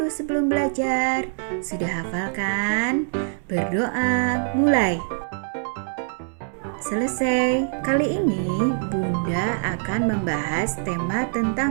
sebelum belajar. Sudah hafal kan? Berdoa, mulai. Selesai. Kali ini Bunda akan membahas tema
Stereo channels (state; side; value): silent; left; 63 dB below the other